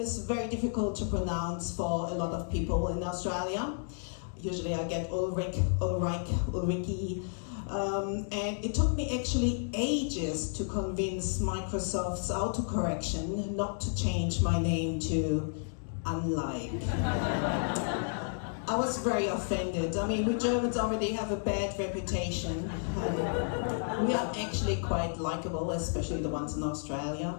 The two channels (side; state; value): right; silent; digital silence